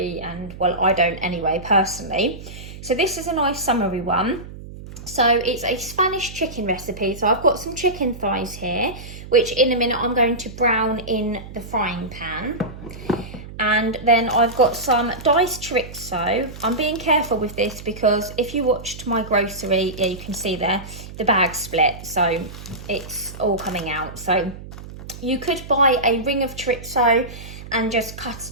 and well, I don't anyway, personally. So this is a nice summery one. So it's a Spanish chicken recipe. So I've got some chicken thighs here, which in a minute I'm going to brown in the frying pan. And then I've got some diced chorizo. I'm being careful with this because if you watched my grocery, yeah, you can see there, the bag split. So it's all coming out. So you could buy a ring of chorizo and just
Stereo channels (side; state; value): right; noise; hum, 13 dB below the sound